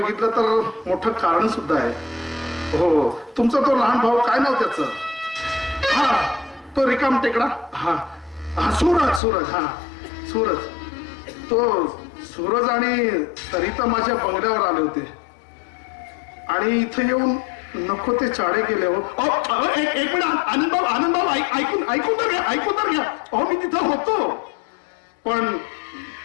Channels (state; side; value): drops out; right; at 9.2 s